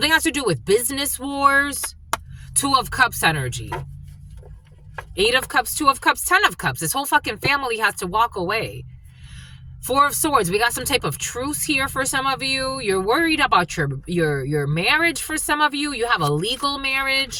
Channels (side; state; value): both; identical; correlation 1.00